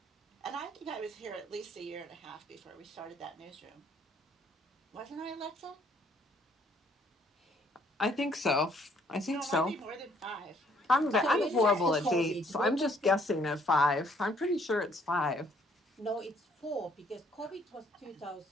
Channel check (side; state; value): both; normal; correlation 0.64